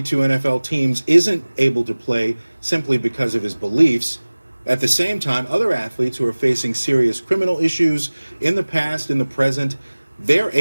NFL teams isn't able to play simply because of his beliefs, at the same time, other athletes who are facing serious criminal issues in the past, in the present, they're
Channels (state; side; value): inverted; both; correlation -1.00